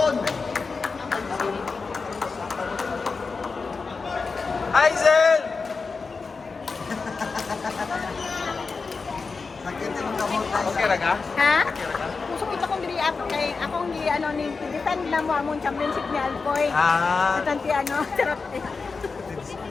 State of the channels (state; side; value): quieter; right; 4.5 dB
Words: Hazel! Sakit yung kamot tayo. Okay ra ka? Ha? Okay ra ka? Pusok ito kong diri ako kay akong gi ano ni defend na mo among championship ni Alcoy. Ah, Tanti ano, charot eh.